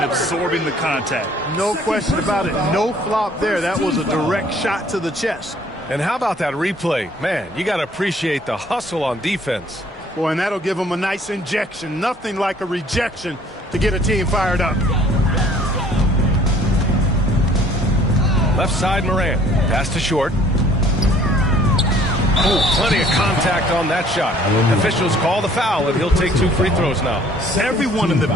absorbing the contact. No question about it. No flop there. That was a direct shot to the chest. And how about that replay? Man, you got to appreciate the hustle on defense. Boy, and that'll give them a nice injection. Nothing like a rejection to get a team fired up. Left side Morant. Pass to short. Oh, plenty of contact on that shot. Officials call the foul, and he'll take 2 free throws now. Everyone in the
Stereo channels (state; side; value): normal; both; correlation 0.57